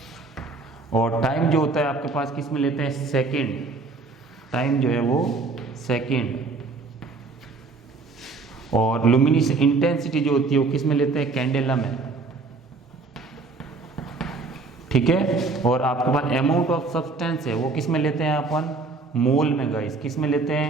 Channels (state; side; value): quieter; left; 3.9 dB